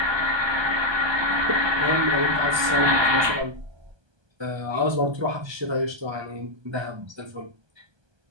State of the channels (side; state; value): left; late; 1.2 ms